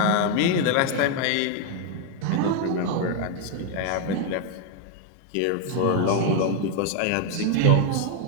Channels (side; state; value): both; different; correlation 0.00